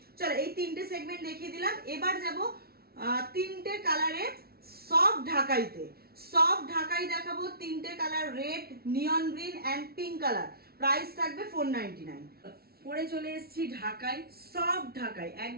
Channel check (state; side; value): late; left; 0.44 ms